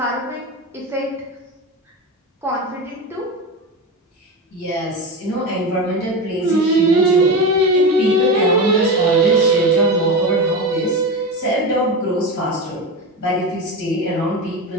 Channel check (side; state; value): both; normal; correlation 0.21